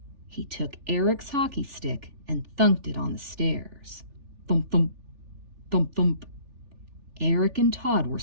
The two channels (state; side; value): late; left; 3.4 ms